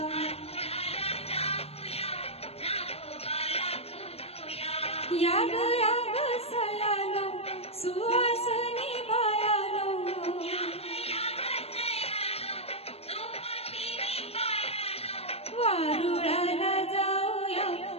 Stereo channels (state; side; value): late; right; 0.29 ms